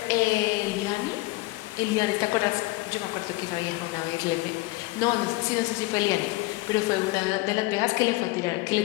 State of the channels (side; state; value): right; quieter; 21.3 dB